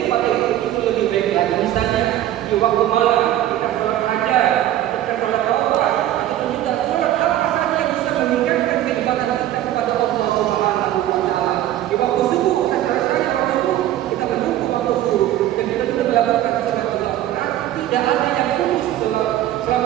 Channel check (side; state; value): left; quieter; 13.0 dB